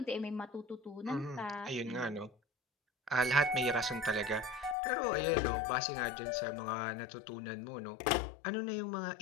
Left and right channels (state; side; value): drops out; right; at 4.8 s